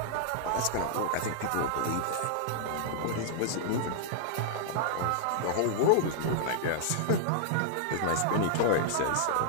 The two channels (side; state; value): both; different; correlation -0.01